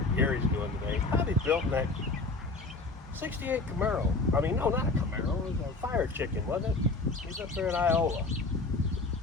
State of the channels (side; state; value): right; quieter; 3.4 dB